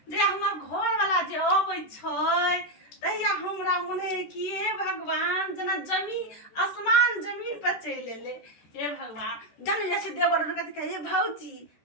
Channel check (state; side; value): late; right; 13 ms